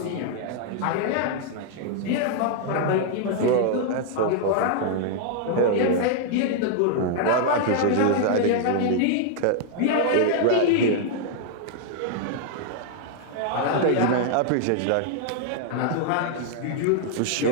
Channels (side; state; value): both; different; correlation -0.01